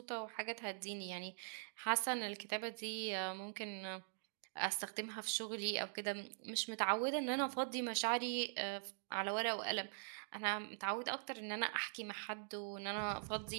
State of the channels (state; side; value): silent; left; digital silence